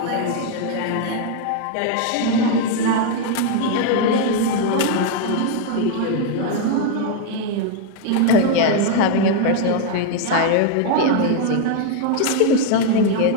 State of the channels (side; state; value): both; different; correlation 0.00